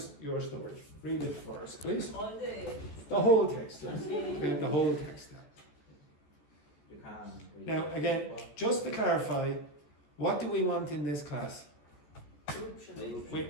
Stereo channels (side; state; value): right; late; 14 ms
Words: your story? Read it for us, please. All The whole text. Yes. Okay, the whole text. You can. Now, again, just to clarify, what do we want in this class? Corruption.